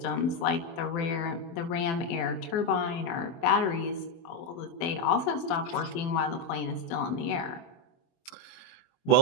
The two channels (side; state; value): right; late; 24 ms